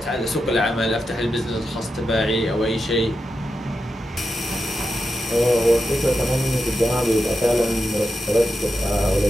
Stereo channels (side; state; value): both; normal; correlation 0.88